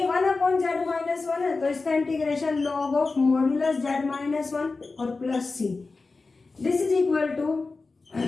1 अपॉन z माइनस 1 है तो इसका integration log of modulus z minus 1 और plus c. This is equal to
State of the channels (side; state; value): right; quieter; 3.9 dB